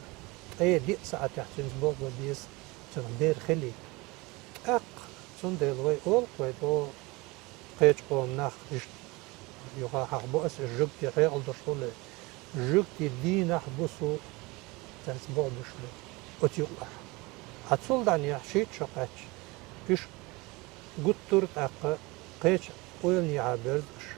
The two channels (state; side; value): quieter; left; 24.1 dB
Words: أي دي ساعة تحت نسبوع بديز تون بير خلي أق تون دلوي أول قوي دو قيتش قوم ناخ يقع حق بؤس الجوكتي غير الدشولة جوكتي دي ناخ بوسو تسبوع بشلو وتيقع هتصل دعني حشيت شقاتش إيش قطرت أق قيتش ويلني عابرزش